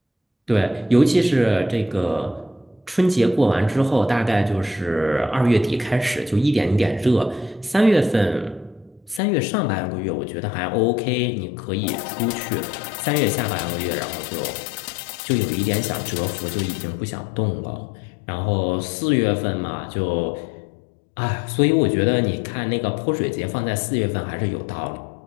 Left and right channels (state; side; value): drops out; right; at 9.2 s